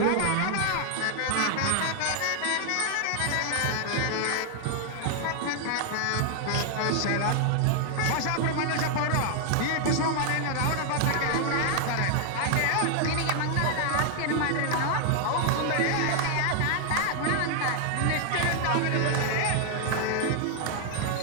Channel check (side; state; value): both; different; correlation 0.00